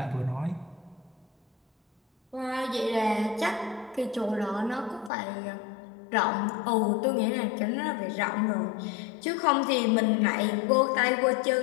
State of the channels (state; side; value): drops out; right; at 5.1 s